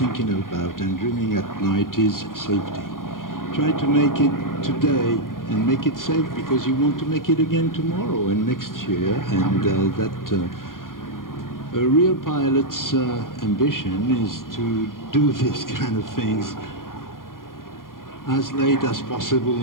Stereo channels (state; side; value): late; right; 0.90 ms